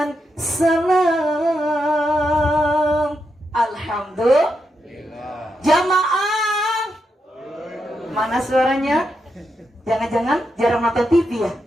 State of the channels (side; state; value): both; normal; correlation 0.84